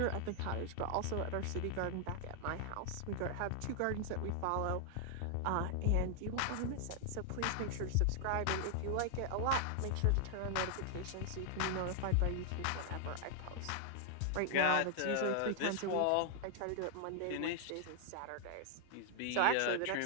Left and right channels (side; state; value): both; different; correlation 0.00